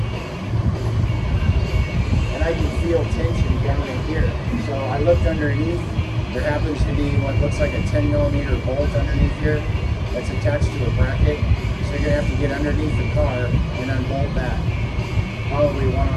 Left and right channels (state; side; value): identical; both; correlation 1.00